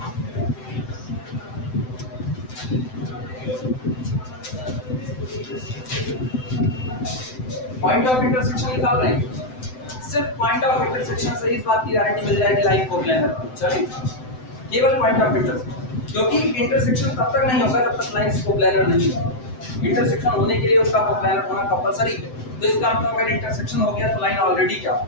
पॉइंट ऑफ इंटरसेक्शन निकाल रहे हैं, सिर्फ पॉइंट ऑफ इंटरसेक्शन से इस बात की गारंटी मिल जाएगी लाइन कोप्लेनर। चलिए केवल पॉइंट ऑफ इंटरसेक्शन, क्योंकि इंटरसेक्शन तब तक नहीं होगा जब तक लाइन कोप्लेनर नहीं है। इंटरसेक्शन होने के लिए उसका कोप्लेनर होना कंपलसरी है। तो इसका मतलब अगर इंटरसेक्शन हो गया तो लाइन ऑलरेडी क्या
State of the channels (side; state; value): right; late; 7.8 ms